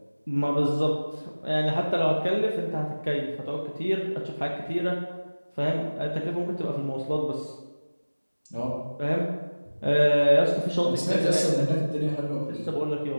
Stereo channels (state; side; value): inverted; both; correlation -1.00